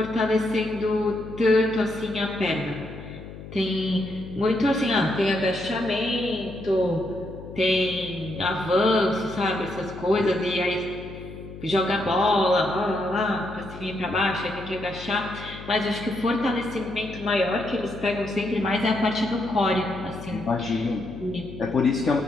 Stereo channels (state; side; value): noise; left; hum, 13 dB below the sound